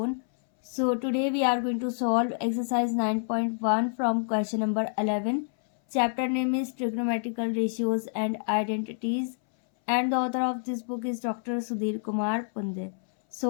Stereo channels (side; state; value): right; silent; 59 dB below the other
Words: So today we are going to solve exercise 9.1 from question number 11. Chapter name is Trigonometrical Ratios and Identities, and the author of this book is Dr. Sudhir Kumar Punde.